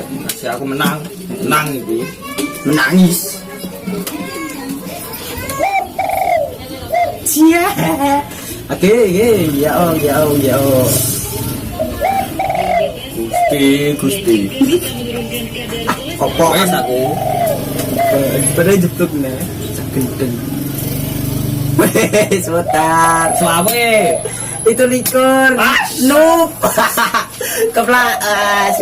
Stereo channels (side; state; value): both; identical; correlation 1.00